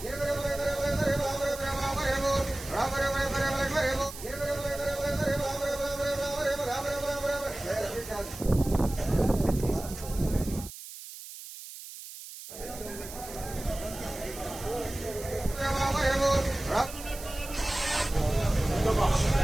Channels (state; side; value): noise; right; hiss, 13 dB below the sound